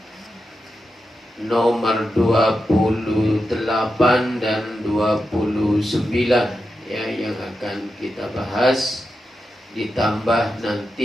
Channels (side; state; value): both; normal; correlation 0.89